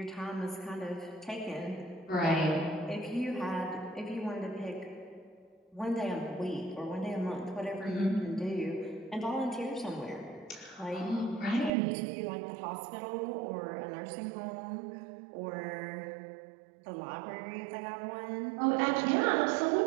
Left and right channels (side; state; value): left; drops out; at 11.7 s